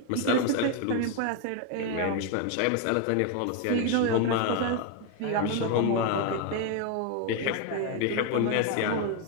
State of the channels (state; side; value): different; both; correlation 0.01